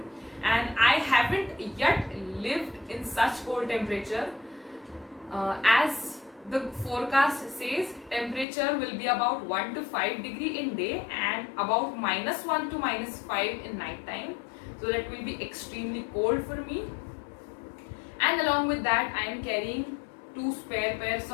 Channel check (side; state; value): right; drops out; at 8.5 s